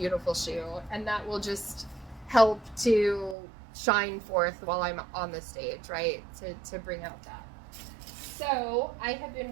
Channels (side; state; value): left; drops out; at 3.4 s